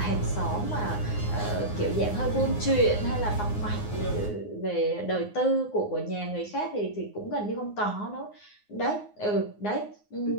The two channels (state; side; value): late; right; 9.6 ms